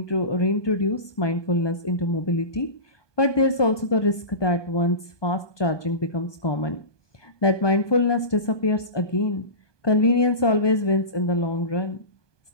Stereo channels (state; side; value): late; right; 1.2 ms